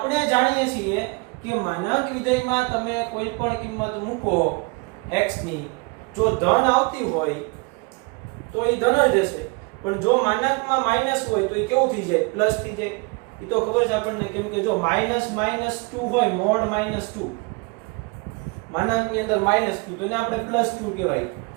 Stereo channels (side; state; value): left; quieter; 29.3 dB